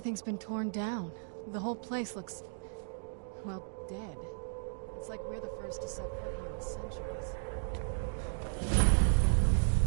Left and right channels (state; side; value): silent; left; digital silence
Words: been torn down. The whole place looks, well, dead. It's like we're the first to set foot here in centuries.